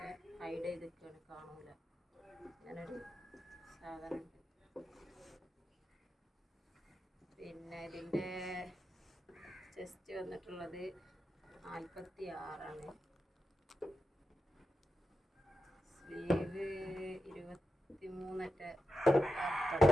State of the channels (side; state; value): both; normal; correlation 0.89